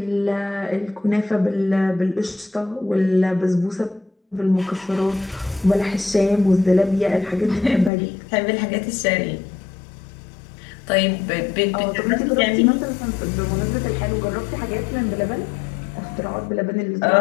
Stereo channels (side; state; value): right; drops out; at 7.9 s